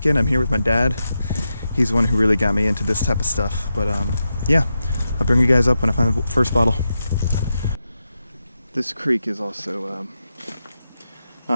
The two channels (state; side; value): inverted; both; correlation -0.88